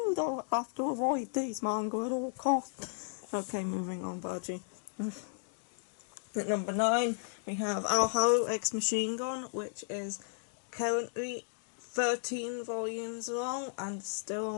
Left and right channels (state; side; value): silent; right; digital silence